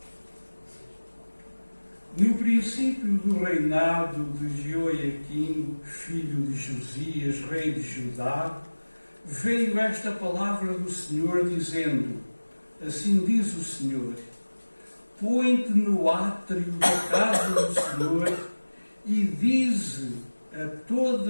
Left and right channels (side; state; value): both; inverted; correlation -1.00